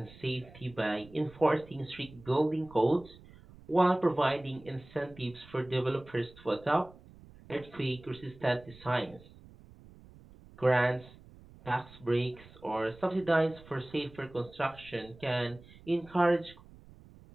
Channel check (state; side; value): noise; right; rumble, 22 dB below the sound